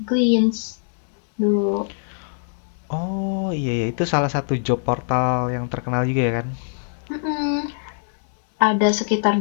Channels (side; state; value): right; silent; digital silence